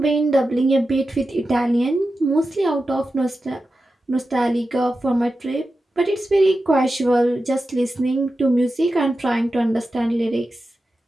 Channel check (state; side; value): normal; both; correlation 0.92